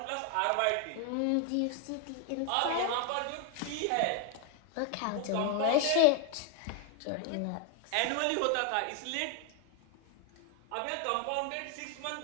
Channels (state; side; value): different; both; correlation 0.00